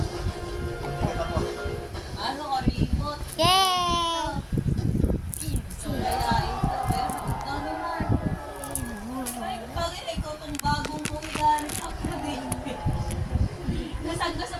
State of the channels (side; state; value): both; identical; correlation 1.00